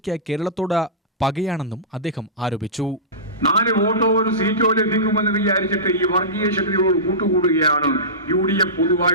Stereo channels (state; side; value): normal; both; correlation -0.19